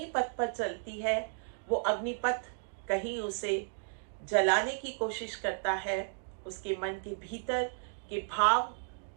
पर चलती है। वो अग्निपथ कहीं उसे जलाने की कोशिश करता है, उसके मन के भीतर के भाव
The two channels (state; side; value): silent; left; digital silence